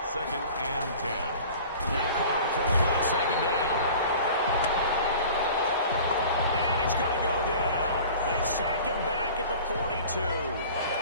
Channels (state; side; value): inverted; both; correlation -0.43